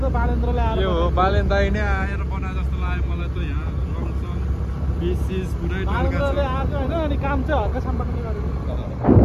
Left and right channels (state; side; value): identical; both; correlation 1.00